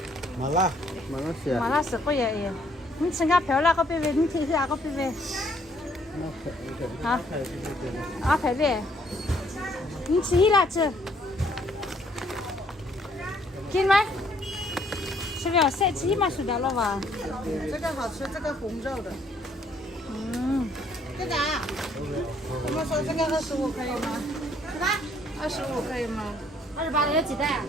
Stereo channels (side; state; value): both; normal; correlation 0.65